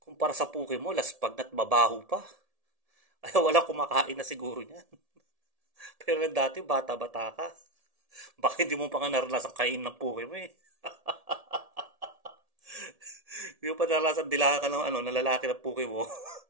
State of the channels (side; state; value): left; late; 1.7 ms